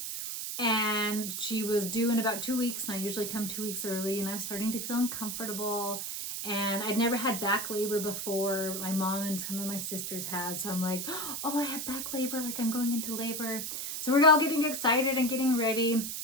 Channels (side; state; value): right; noise; hiss, 4 dB below the sound